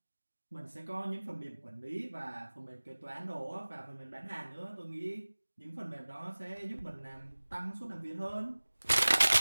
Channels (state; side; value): inverted; both; correlation -1.00